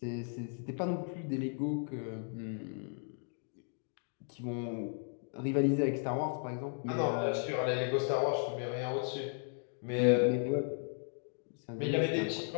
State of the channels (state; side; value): silent; right; 54 dB below the other